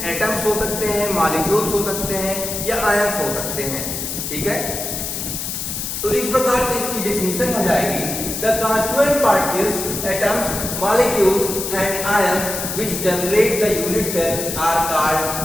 एटम्स हो सकते हैं, मॉलिक्यूल्स हो सकते हैं या आयंस हो सकते हैं। ठीक है, तो इस प्रकार से इसकी डेफिनेशन हो जाएगी the constituent particles, atoms, molecules and ions which generate the unit cell are called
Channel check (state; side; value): noise; left; hiss, 4 dB below the sound